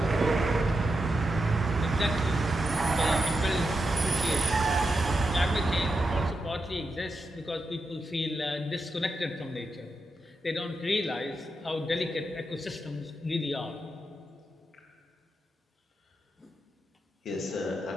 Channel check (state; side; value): normal; both; correlation 0.87